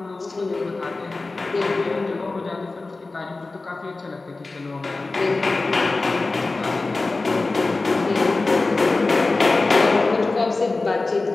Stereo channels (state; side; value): quieter; right; 3.4 dB